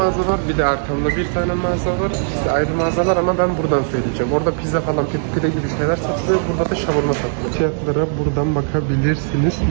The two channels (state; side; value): silent; left; digital silence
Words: var. Bir de arkamda bir tane mağaza var. İkisi ayrı mağazalar ama ben buradan söyleyeceğim. Orada pizza falan, pide gibi şeyler satılıyor. Burada da şavurma satılıyor. Fiyatlara buradan bakabilirsiniz.